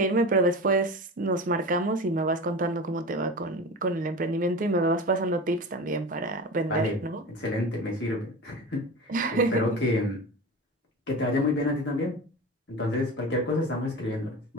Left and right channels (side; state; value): both; normal; correlation 0.30